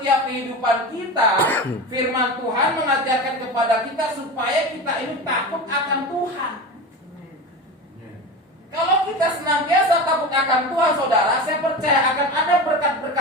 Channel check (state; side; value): normal; both; correlation 0.27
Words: kehidupan kita, firman Tuhan mengajarkan kepada kita supaya kita ini takut akan Tuhan. Kalau kita senantiasa takut akan Tuhan, saudara, saya percaya akan ada